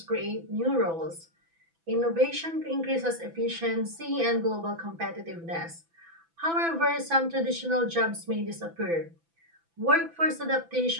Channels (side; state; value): left; late; 6.0 ms